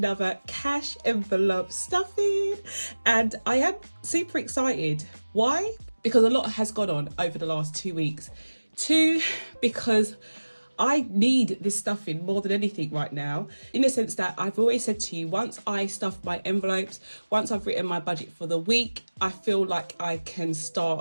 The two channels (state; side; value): inverted; both; correlation -1.00